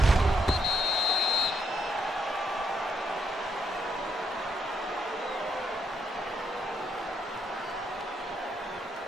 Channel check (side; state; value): both; normal; correlation 0.77